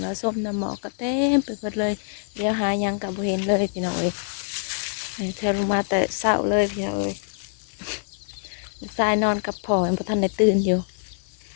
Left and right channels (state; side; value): silent; right; digital silence